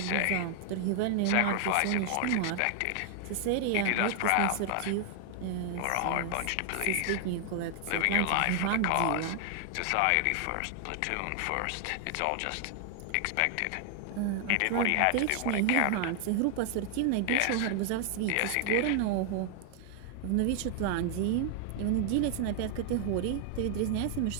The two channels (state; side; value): different; both; correlation 0.00